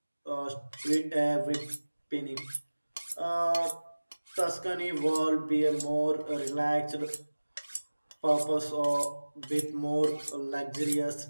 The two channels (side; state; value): both; inverted; correlation -1.00